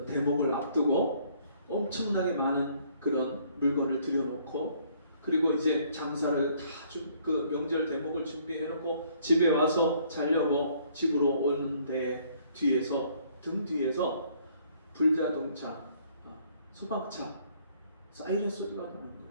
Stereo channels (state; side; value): inverted; both; correlation -0.63